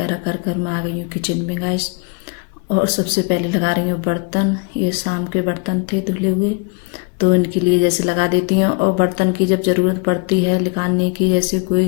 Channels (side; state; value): right; quieter; 31.5 dB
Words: कर कर मैं आ गई हूँ किचन में गाइस। और सबसे पहले लगा रही हूँ बर्तन। ये शाम के बर्तन थे धुले हुए, तो इनके लिए जैसे लगा देती हूँ। और बर्तन की जब ज़रूरत पड़ती है निकालने की, जैसे